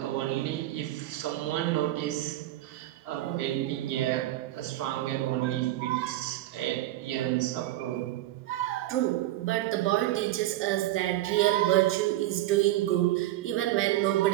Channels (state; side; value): quieter; left; 15.2 dB